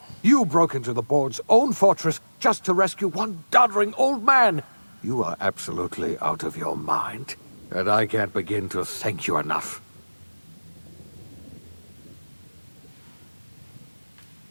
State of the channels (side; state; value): both; inverted; correlation -1.00